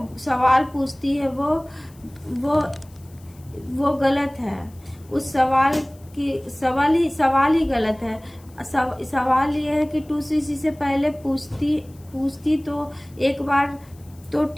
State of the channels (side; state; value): left; noise; hiss, 28 dB below the sound